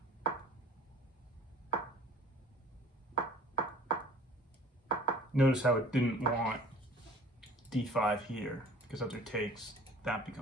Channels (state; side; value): normal; both; correlation 0.49